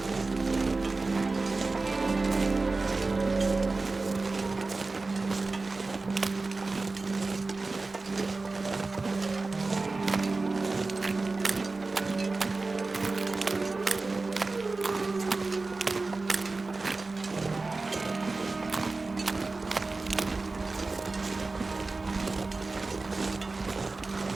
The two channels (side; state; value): left; quieter; 3.6 dB